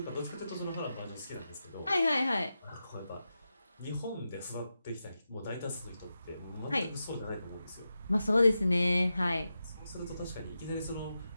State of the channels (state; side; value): inverted; both; correlation -0.90